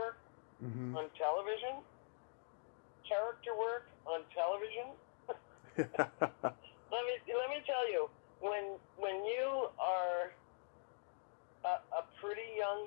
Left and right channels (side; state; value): right; silent; digital silence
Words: on television. Character work on television. Let me tell you, when you are a pretty